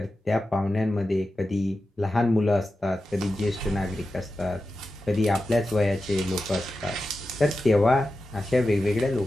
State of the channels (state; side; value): normal; both; correlation 0.92